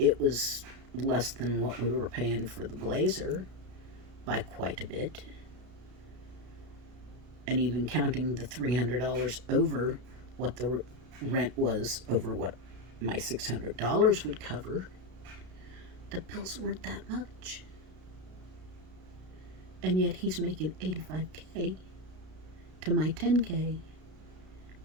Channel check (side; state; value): left; late; 33 ms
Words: was less than what we were paying for the Blazer by quite a bit. And even counting the $300 over what the rent was over what my $600 would cover, the bills weren't that much. And yet he's making $85K to my $10K.